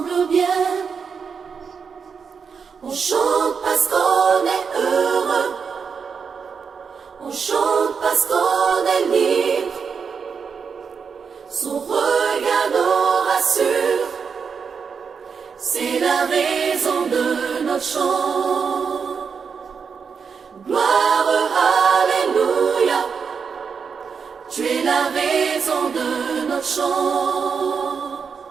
bien. On chante parce qu'on est heureux, on chante parce qu'on est libre. Son regard nous rassure, c'est la raison de notre chant. Gloire, alléluia, tu es la raison de notre chant.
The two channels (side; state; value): left; quieter; 6.0 dB